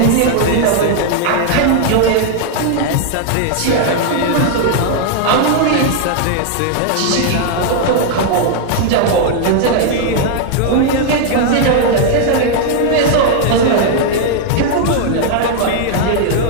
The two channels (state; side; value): different; both; correlation 0.00